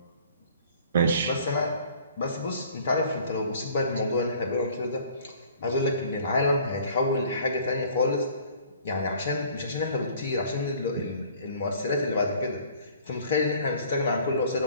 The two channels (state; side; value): inverted; both; correlation -0.52